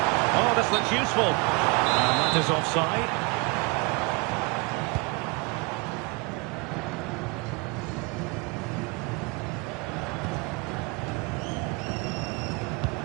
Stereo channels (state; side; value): quieter; left; 29.4 dB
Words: Oh, this looks useful. And that is offside.